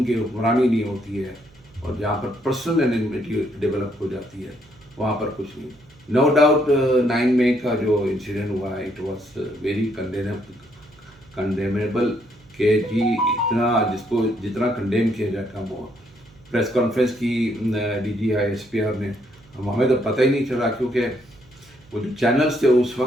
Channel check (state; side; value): noise; right; hum, 27 dB below the sound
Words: کی حکمرانی نہیں ہوتی ہے، اور جہاں پر پرسنل انمیٹی ڈیولپ ہو جاتی ہے، وہاں پر کچھ نہیں۔ نو ڈاؤٹ 9 مئی کا جو انسیڈنٹ ہوا ہے، اٹ واز ویری کنڈیمیبل، کہ جی اتنا جس کو جتنا کنڈیم کیا جائے کم ہوا۔ پریس کانفرنس کی D G I S P R نے، ہمیں تو پتہ ہی نہیں چلا، کیونکہ وہ جو چینلز تھے اس